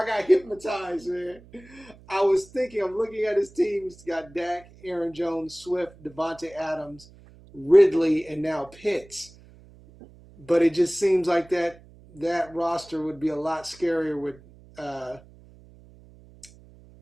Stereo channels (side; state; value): right; noise; hum, 23 dB below the sound